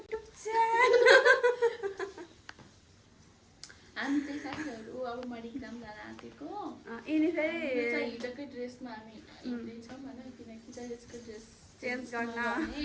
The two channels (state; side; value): identical; both; correlation 1.00